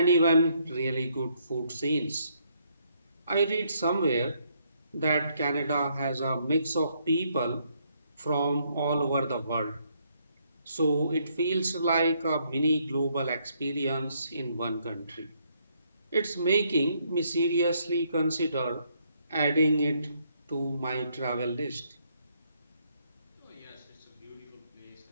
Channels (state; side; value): inverted; both; correlation -0.72